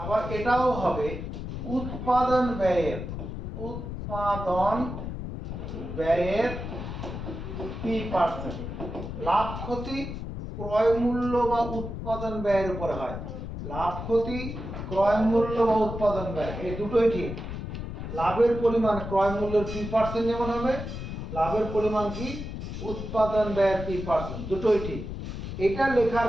এটাও হবে উৎপাদন ব্যয়ের P%। লাভ ক্ষতি ক্রয় মূল্য বা উৎপাদন ব্যয়ের উপরে হয়। লাভ ক্ষতি ক্রয় মূল্য বা উৎপাদন ব্যয়, এই দুটোই ঠিক। লাভের পরিমাণ ক্রয় মূল্যের P% যেমন হবে, লাভের পরিমাণ কি উৎপাদন ব্যয়ের P%, দুটোই ঠিক। এটা লেখার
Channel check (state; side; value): noise; left; rumble, 7 dB below the sound